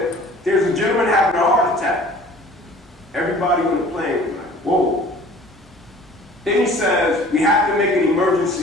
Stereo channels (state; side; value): normal; both; correlation 0.49